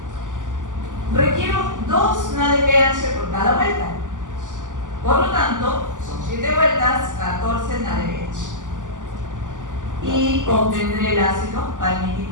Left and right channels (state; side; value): late; left; 0.87 ms